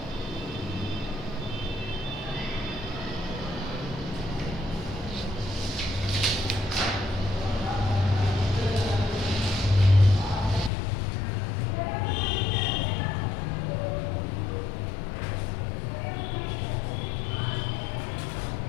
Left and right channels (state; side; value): drops out; right; at 10.7 s